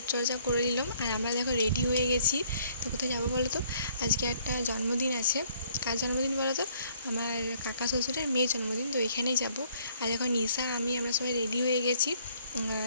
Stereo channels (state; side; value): inverted; both; correlation -0.63